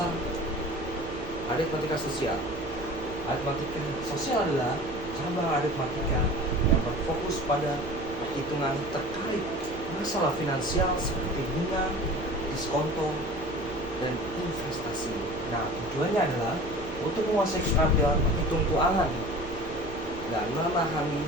aritmatika sosial. Aritmatika sosial adalah cabang aritmatika yang berfokus pada perhitungan terkait masalah finansial seperti bunga, diskonto, dan investasi. Nah, tujuannya adalah untuk menguasai keterampilan menghitung keuangan dan memahami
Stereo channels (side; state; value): both; normal; correlation 0.40